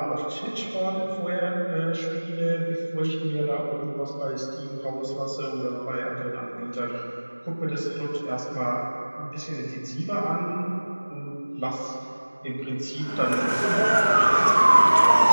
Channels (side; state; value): both; inverted; correlation -1.00